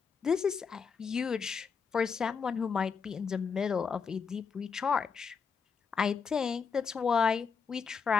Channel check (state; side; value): quieter; right; 5.9 dB